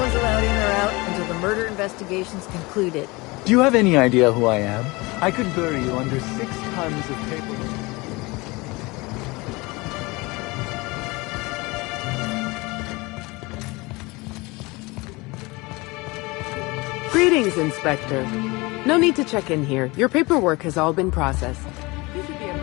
allowed in or out until the murder investigation's concluded. Do you have any idea who I am? I could bury you under 6 tons of paperwork. Greetings, Inspector. No need to check in here. Your paperwork has all been processed.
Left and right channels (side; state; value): right; quieter; 24.1 dB